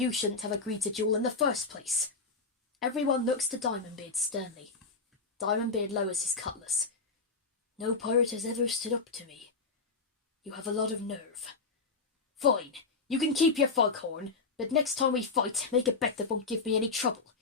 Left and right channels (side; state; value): right; quieter; 4.2 dB